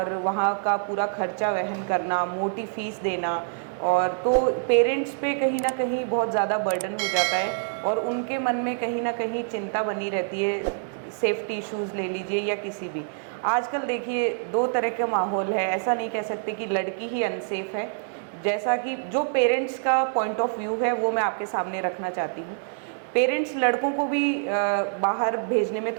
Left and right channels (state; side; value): silent; left; digital silence